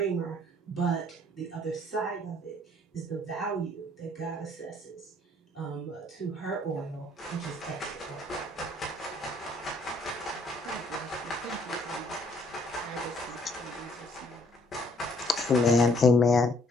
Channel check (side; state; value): both; normal; correlation 0.62